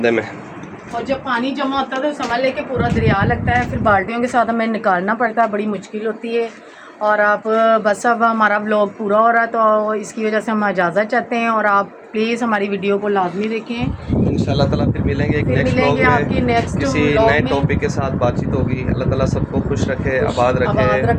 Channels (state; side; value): identical; both; correlation 1.00